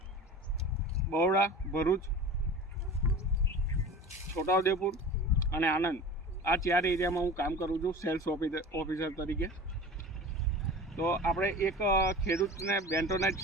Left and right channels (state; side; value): normal; both; correlation 0.36